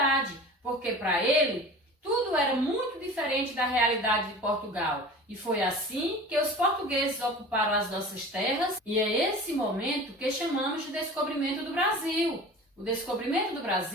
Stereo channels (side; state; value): both; normal; correlation 0.37